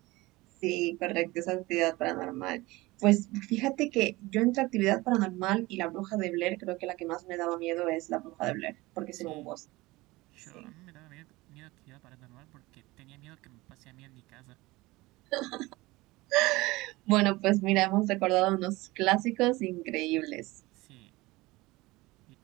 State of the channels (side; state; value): left; quieter; 20.8 dB